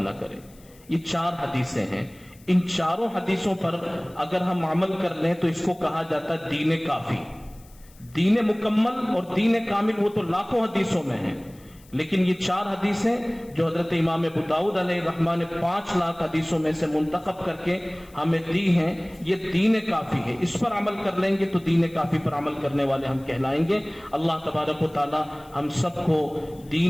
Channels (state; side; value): noise; left; hiss, 27 dB below the sound